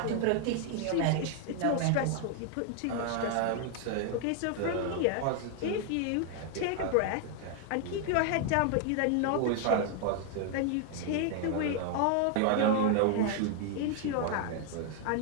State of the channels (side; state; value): both; different; correlation 0.00